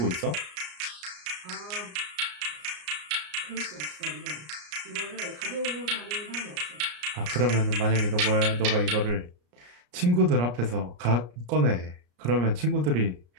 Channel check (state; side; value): late; left; 34 ms